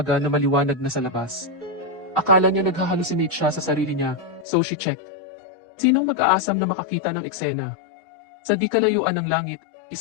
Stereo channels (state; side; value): drops out; right; at 4.5 s